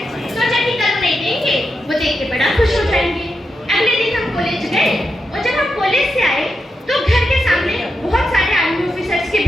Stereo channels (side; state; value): both; normal; correlation 0.86